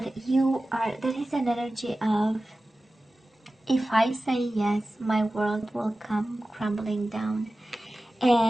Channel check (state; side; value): normal; both; correlation 0.96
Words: there is an energy of, if I say yes, my world will come crumbling down,